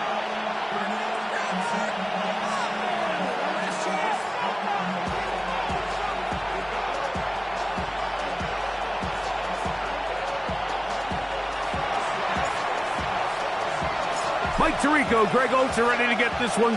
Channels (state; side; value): identical; both; correlation 1.00